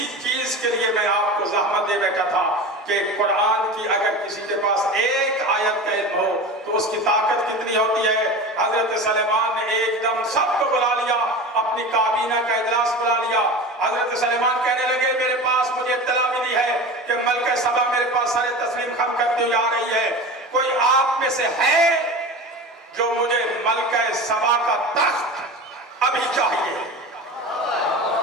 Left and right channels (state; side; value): normal; both; correlation 0.31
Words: چیز کے لیے میں آپ کو زحمت دے بیٹھا تھا کہ قرآن کی اگر کسی کے پاس ایک آیت کا علم ہو تو اس کی طاقت کتنی ہوتی ہے. حضرت سلیمان نے ایک دم سب کو بلا لیا، اپنی کابینہ کا اجلاس بلا لیا. حضرت سلیمان کہنے لگے میرے پاس مجھے اطلاع ملی ہے کہ ملکہ سبا میرے پاس سارے تسلیم خم کرتی ہوئی آ رہی ہے. کوئی آپ میں سے ہے جو مجھے ملکہ سبا کا تخت ابھی چاہیے؟